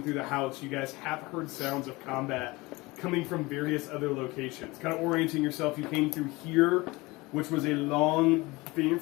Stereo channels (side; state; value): right; quieter; 22.6 dB